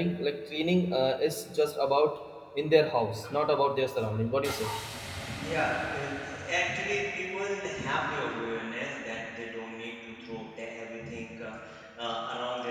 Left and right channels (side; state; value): both; identical; correlation 1.00